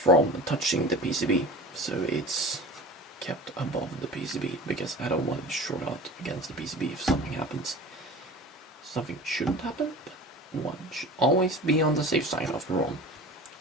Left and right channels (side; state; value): both; normal; correlation 0.37